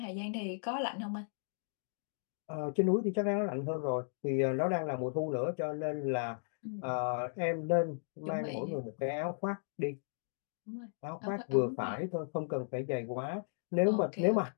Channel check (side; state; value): right; silent; digital silence